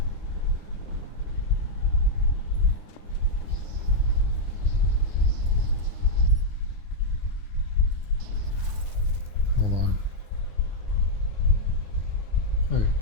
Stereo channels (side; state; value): right; late; 9.8 ms